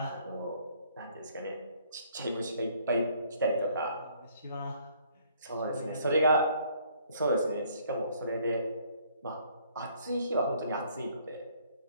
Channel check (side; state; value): both; inverted; correlation -0.63